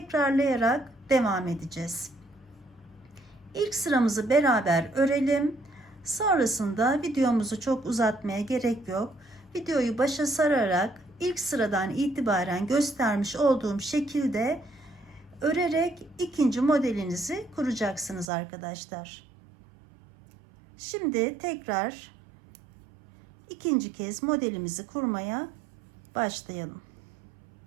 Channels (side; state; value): left; drops out; at 18.3 s